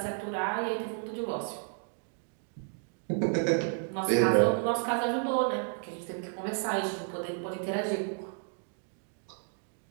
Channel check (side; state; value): left; silent; 56 dB below the other